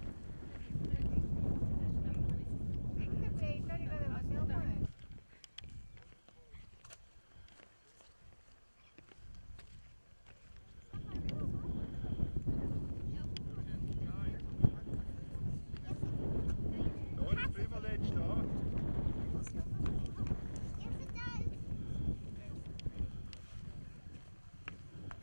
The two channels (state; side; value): inverted; both; correlation -1.00